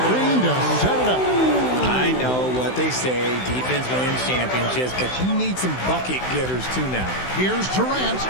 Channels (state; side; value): late; right; 16 ms